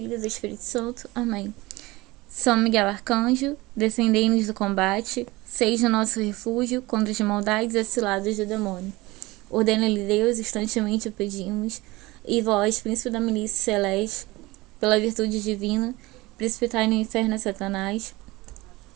e do Espírito Santo. Amém. São Miguel Arcanjo, defendei-nos do combate, seja o nosso refúgio contra as maldades e ciladas do demônio. Ordena-lhe Deus, instantemente o pedimos, e vós, príncipe da milícia celeste, pela virtude divina, precipitai no inferno a Satanás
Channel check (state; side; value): quieter; left; 20.9 dB